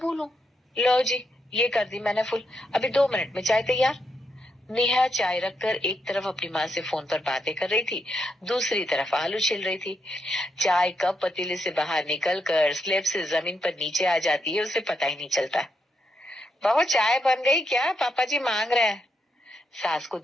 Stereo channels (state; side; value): normal; both; correlation 0.81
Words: लो जी, ये कर दी मैंने फुल। अभी 2 मिनट में चाय तैयार। नेहा चाय रखकर एक तरफ अपनी माँ से फोन पर बातें कर रही थी, दूसरी तरफ आलू छिल रही थी। चाय कप पतीले से बाहर निकल कर स्लेब से जमीन पर नीचे आ जाती है, उसे पता ही नहीं चलता। बहू चाय बन गई क्या, पापा जी मांग रहे हैं। सास को